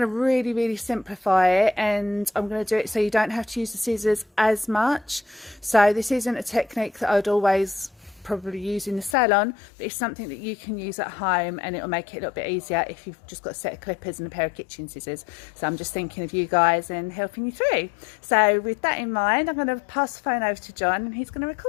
really simplify it, and I'm going to do it so you don't have to use the scissors as much. So this isn't a technique that I'd always probably use in the salon, but it's something that you can use at home, and it'll make it a little bit easier if you've just got a set of clippers and a pair of kitchen scissors. So I'm just thinking of you guys and helping you through. So with that in mind, I'm going to pass the phone over to John, and he's going to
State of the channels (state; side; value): drops out; right; at 9.2 s